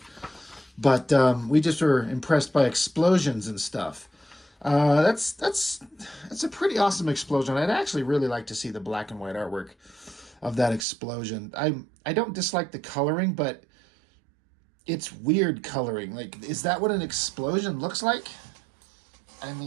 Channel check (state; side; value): drops out; left; at 10.9 s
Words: But we just were impressed by explosions and stuff. That's a pretty awesome explosion. I'd actually really like to see the black and white artwork of that explosion. I don't dislike the coloring, but it's weird coloring. Like, is that what an explosion looks like? I